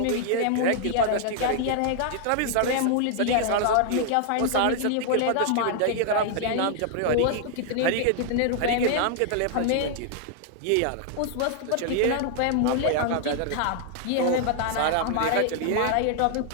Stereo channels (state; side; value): different; both; correlation 0.00